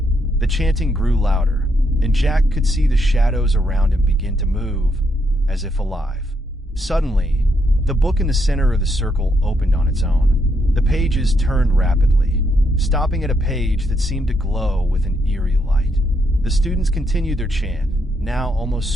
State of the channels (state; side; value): normal; both; correlation 0.77